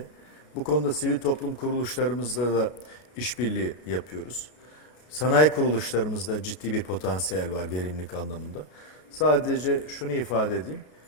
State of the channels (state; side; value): late; right; 32 ms